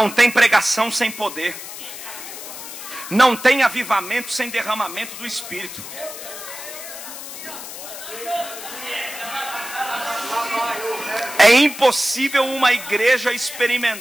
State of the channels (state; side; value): noise; left; hiss, 11 dB below the sound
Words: tem pregação sem poder. Não tem avivamento sem derramamento do Espírito. É impossível uma igreja